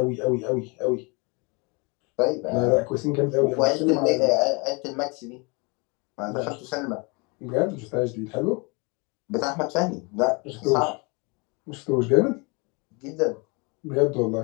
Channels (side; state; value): right; quieter; 30.0 dB